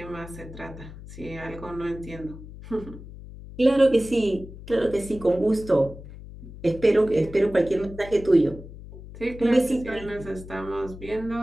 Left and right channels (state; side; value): noise; left; hum, 15 dB below the sound